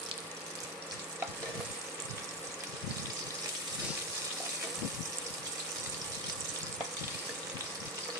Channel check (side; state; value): both; normal; correlation 0.14